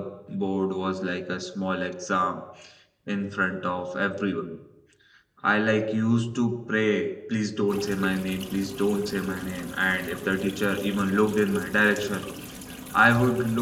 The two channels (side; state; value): both; identical; correlation 1.00